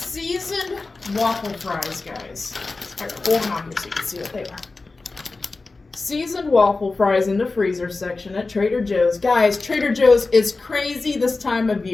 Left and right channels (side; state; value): right; quieter; 3.6 dB